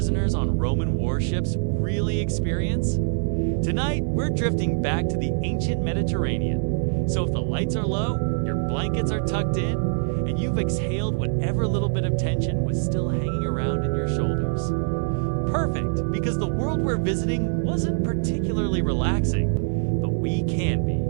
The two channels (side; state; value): left; silent; digital silence